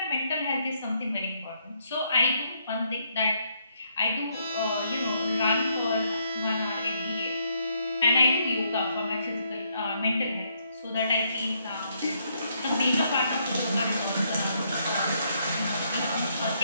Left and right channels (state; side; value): inverted; both; correlation -0.73